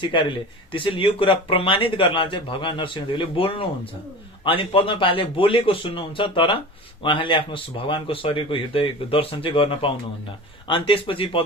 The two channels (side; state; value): both; normal; correlation 0.34